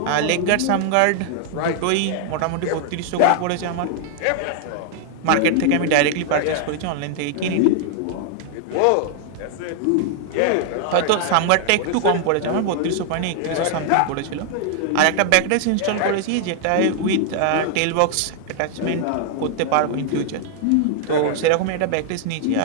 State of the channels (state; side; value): different; both; correlation 0.00